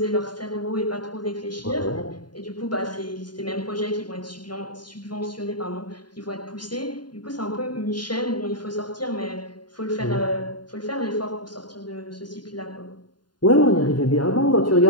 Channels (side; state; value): right; late; 0.71 ms